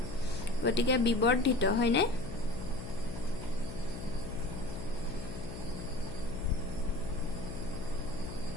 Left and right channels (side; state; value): left; noise; hum, 9 dB below the sound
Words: গতিকে বিবৰ্ধিত হয়নে